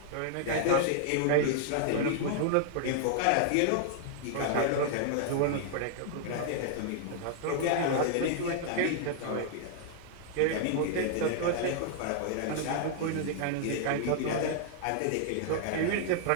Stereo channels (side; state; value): both; different; correlation -0.01